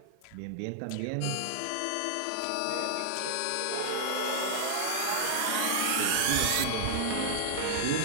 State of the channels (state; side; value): different; both; correlation -0.01